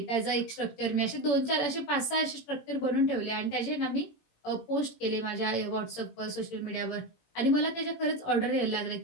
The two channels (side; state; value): right; late; 17 ms